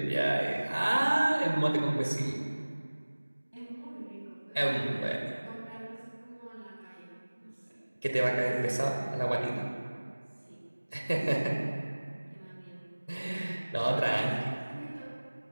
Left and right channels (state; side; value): inverted; both; correlation -1.00